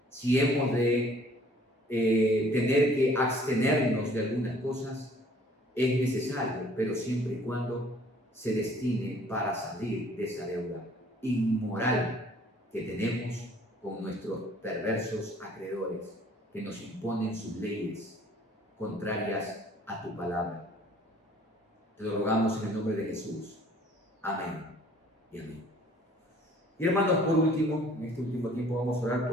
Si hemos de tener que abstenernos de algunas cosas, es necesario, pero siempre y cuando se destine para salir de esa deuda inmoral que tenemos con nuestros perversos acreedores que nos imponen sus leyes contrarias a tu palabra. Te lo rogamos en el nombre de Jesús. Amén y amén. Y hermanos, por último, en este último tiempo vamos a orar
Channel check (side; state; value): both; normal; correlation 0.56